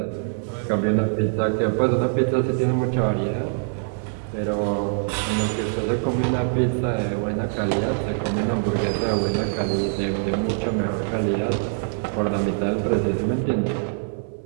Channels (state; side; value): silent; left; 63 dB below the other